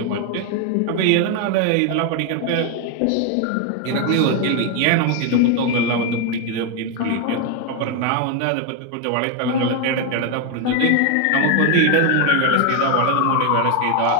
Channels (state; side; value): different; both; correlation 0.01